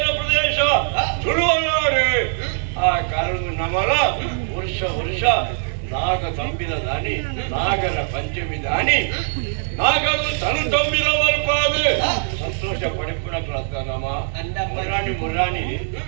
ಪ್ರದೇಶ ಸುರುವನಾಡು ಆ ಕಾರಣ ನಮ್ಮಲ ವರ್ಷ ನಾಗ ತಂಬಿದ ದಾನಿ ನಾಗರ ಪಂಚಮಿ ದಾನಿ ನಾಗರು ತನು ತಂಬಿದ ಮಲ್ಪಾದು ಸಂತೋಷ ಪಡಿಪುಣಕ್ಲತ್ತ ನಮ್ಮ ಮುರಾಣಿ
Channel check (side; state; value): left; silent; digital silence